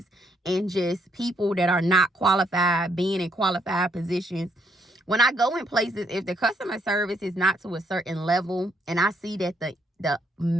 and just people that are not qualified being in qualified positions. When I go in places, if the customer service is not to a certain level, and I see that the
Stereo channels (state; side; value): normal; both; correlation 0.72